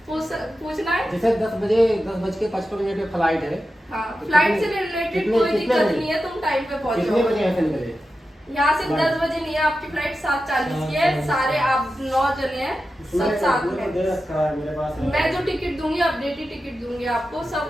पूछना है? जैसे 10:55 पे फ्लाइट है। हाँ, फ्लाइट से रिलेटेड कोई दिक्कत नहीं है, तुम टाइम पे पहुंचो। कितने बजे ऐसे निकले? यहाँ से 10 बजे नहीं है, आपकी फ्लाइट 7:40 की है। सारे आप 9 जने हैं, सब साथ में। मैं जो टिकट दूंगी, अपडेटेड टिकट दूंगी आपको,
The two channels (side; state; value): both; normal; correlation 0.91